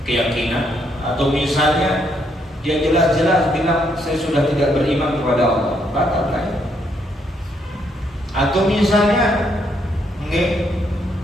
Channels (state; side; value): normal; both; correlation 0.73